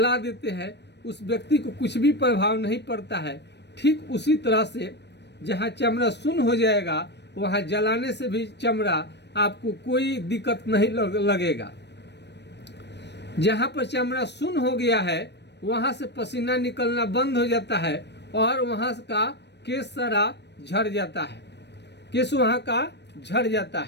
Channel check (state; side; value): late; right; 0.50 ms